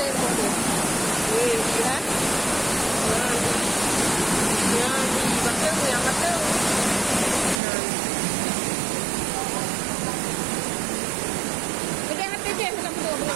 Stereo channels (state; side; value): drops out; left; at 7.6 s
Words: dia. Lihat. Yang betul. Yang hati je hendak betul.